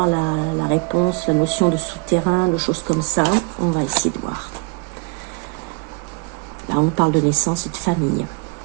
la réponse, la notion de souterrain, de choses comme ça? On va essayer de voir. Là, on parle de naissance et de famille.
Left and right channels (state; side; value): quieter; left; 28.3 dB